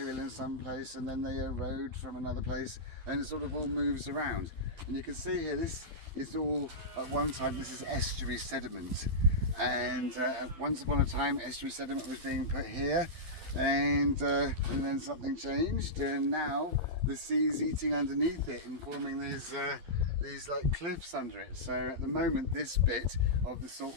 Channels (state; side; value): late; left; 12 ms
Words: in some place and then they erode from another place, and it sort of all moves around. And you can see here, this is all, at one time, this is estuary sediment. And once upon a time, estuary sediment was being put here, and then something changed, and now the sea's eating underneath it and forming these like cliffs under it. So at the moment, this bit of the